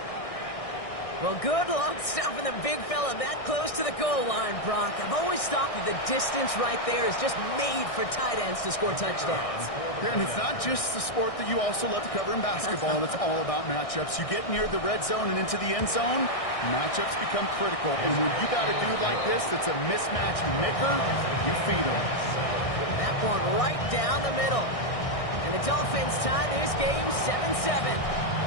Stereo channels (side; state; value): right; late; 1.6 ms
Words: Well, good luck stopping the big fella that close to the goal line, Brock. I've always thought that the distance right there is just made for tight ends to score touchdowns. Yeah, and it's not just the sport that you also love to cover in basketball. It's all about matchups. You get near the red zone and into the end zone, matchups become critical. And when you got a dude like this that's a mismatch maker, you feed him. That one right down the middle. And the Dolphins tie this game 7-7.